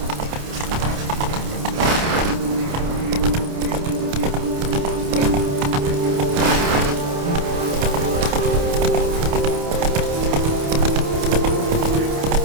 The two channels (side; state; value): left; late; 28 ms